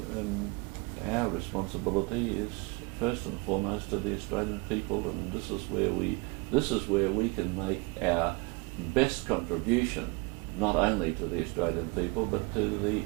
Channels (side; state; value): left; quieter; 27.6 dB